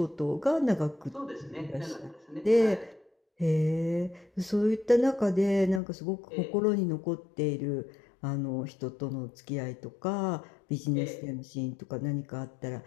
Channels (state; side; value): drops out; right; at 5.8 s